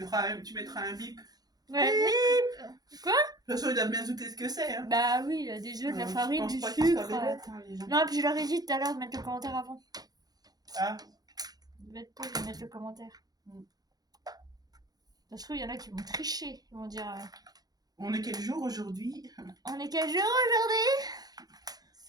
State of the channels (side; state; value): left; late; 0.19 ms